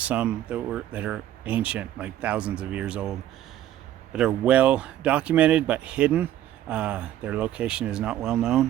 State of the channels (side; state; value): left; quieter; 12.4 dB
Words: that are ancient, like thousands of years old, that are well documented but hidden. Their location is not well